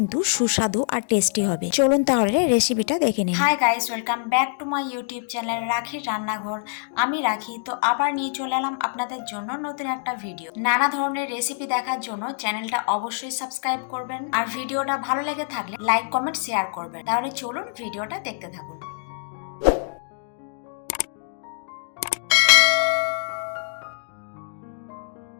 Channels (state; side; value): silent; right; digital silence